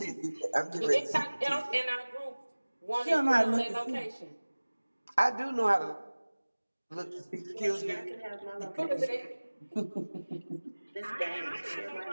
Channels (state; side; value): inverted; both; correlation -1.00